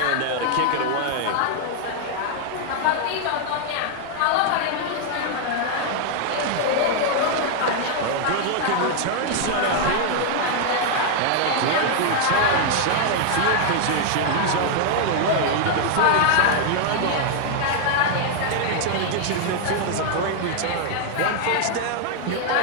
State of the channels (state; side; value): different; both; correlation 0.00